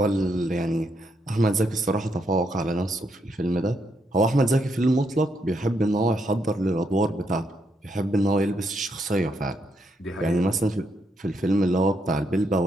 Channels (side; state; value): both; normal; correlation 0.77